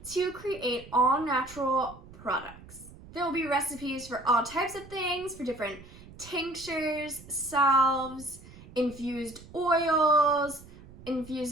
to create all natural products. There will be recipes for all types of things, for different tinctures, salves, infused oils,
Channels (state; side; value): noise; right; rumble, 19 dB below the sound